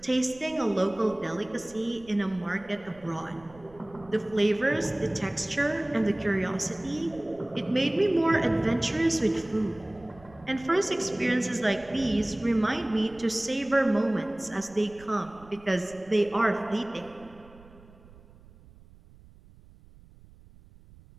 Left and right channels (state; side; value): noise; right; rumble, 23 dB below the sound